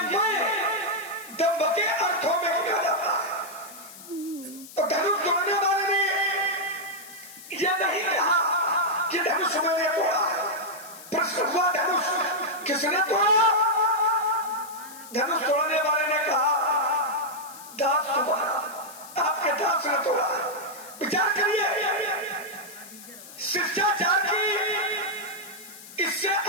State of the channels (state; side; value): noise; left; hiss, 17 dB below the sound